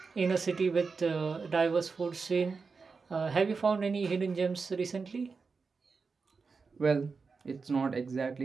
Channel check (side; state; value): left; quieter; 4.8 dB